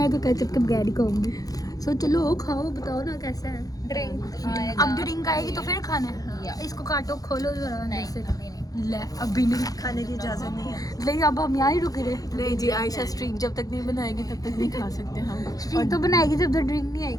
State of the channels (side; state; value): right; late; 0.18 ms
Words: तो केचप के बगैर ही खाऊंगी। सो चलो खाओ, बताओ ना कैसा है। ड्रिंक अब ड्रिंक आएगी तो फिर खाना है। इसको काटो खोलो जरा अंदर से। ले अभी नहीं खाने की इजाजत नहीं है। लेकिन अब हम यहाँ ही रुके रहे। नहीं जी, आयशा स्ट्रीक जब तक नहीं बनाएगी तब तक नहीं खा सकते हम। स्ट्रीक तो बनाएगी जब तक ड्रिंक नहीं